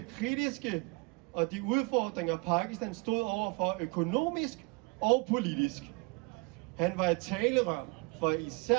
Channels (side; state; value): left; quieter; 28.6 dB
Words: kritiske og de udfordringer, Pakistan stod overfor økonomisk og politisk. Han var et talerør for